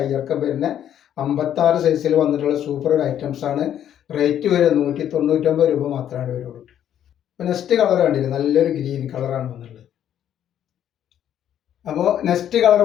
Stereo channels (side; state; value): right; quieter; 10.3 dB